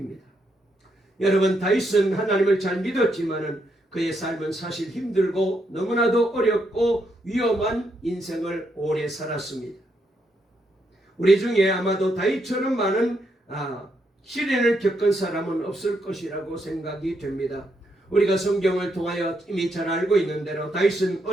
여러분, 다윗은 하나님을 잘 믿었지만은 그의 삶은 사실 힘들고 너무나도 어렵고 위험한 인생을 오래 살았습니다. 우리 중에 아마도 다윗처럼 많은 시련을 겪은 사람은 없을 것이라고 생각이 됩니다. 우리가 성경을 통하여 이미 잘 알고 있는 대로 다윗은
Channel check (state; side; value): normal; both; correlation 0.78